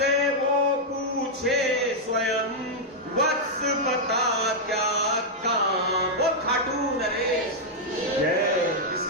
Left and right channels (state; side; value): normal; both; correlation -0.04